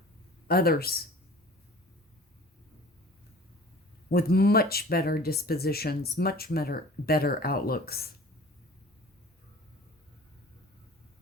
others with much better dispositions, much better outlooks.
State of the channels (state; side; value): normal; both; correlation 0.44